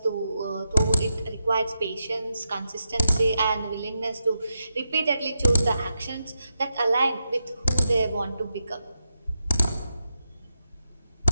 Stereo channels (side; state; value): both; inverted; correlation -0.86